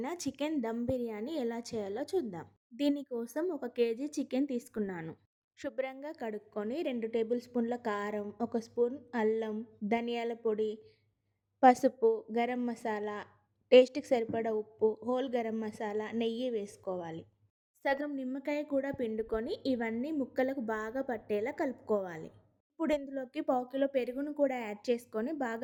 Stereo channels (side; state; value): both; identical; correlation 1.00